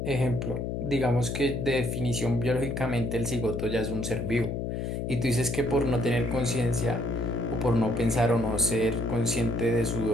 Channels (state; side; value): noise; left; hum, 3 dB below the sound